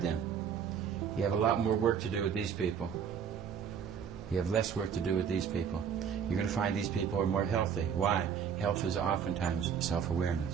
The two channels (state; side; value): quieter; left; 7.5 dB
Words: them. You have a lot more work to do with these people. You have less work to do with these people. You're going to find these people are more healthy. Why? Health is oftentimes